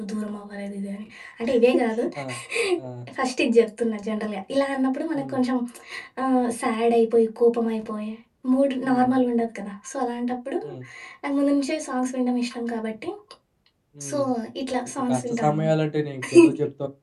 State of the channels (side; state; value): both; identical; correlation 1.00